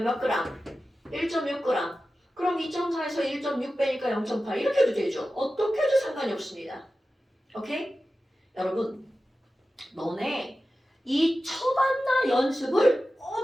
몇 그램? 1.6g. 그럼 2.4에서 1.6 빼니까 0.8 이렇게 해도 되죠. 어떻게 해도 상관이 없습니다. 오케이? 여러분, 너네 이 처반나 연습을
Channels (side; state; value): both; normal; correlation 0.94